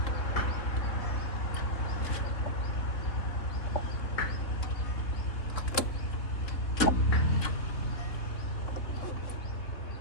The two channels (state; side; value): late; right; 3.5 ms